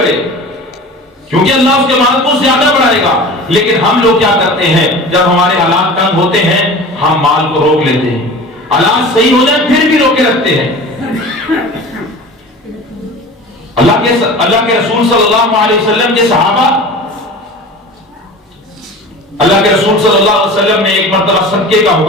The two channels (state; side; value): normal; both; correlation 0.37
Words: کیونکہ اللہ اس کے مال کو زیادہ بڑھائے گا۔ لیکن ہم لوگ کیا کرتے ہیں، جب ہمارے حالات تنگ ہوتے ہیں ہم مال کو روک لیتے ہیں، حالات صحیح ہو جائیں پھر بھی روکے رکھتے ہیں۔ اللہ کے رسول صلی اللہ علیہ وسلم کے صحابہ، اللہ کے رسول صلی اللہ علیہ وسلم نے ایک مرتبہ صدقے کا